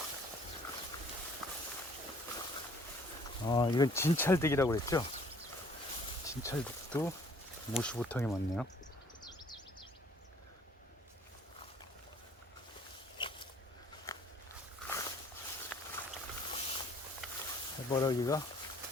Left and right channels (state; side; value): normal; both; correlation 0.57